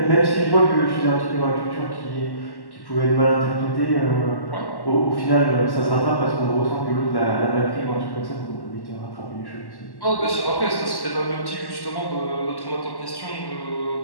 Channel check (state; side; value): late; right; 1.1 ms